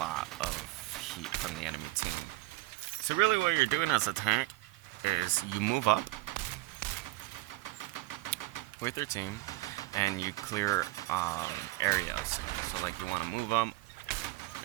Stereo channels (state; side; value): quieter; left; 20.4 dB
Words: of heat from the enemy team. So really what you're doing as a tank is you move up with your team and you clear areas. So like you want to move up